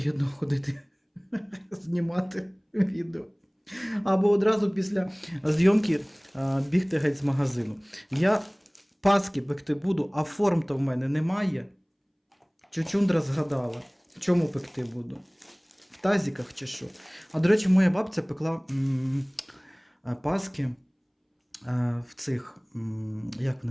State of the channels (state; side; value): identical; both; correlation 1.00